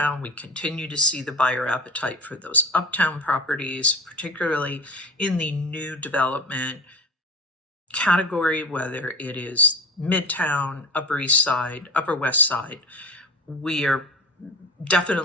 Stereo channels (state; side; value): normal; both; correlation 0.32